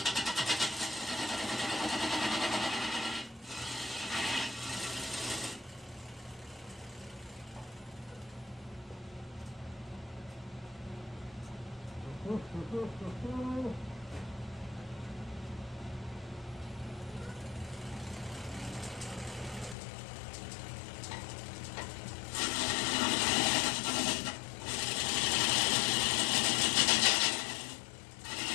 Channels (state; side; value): drops out; right; at 19.8 s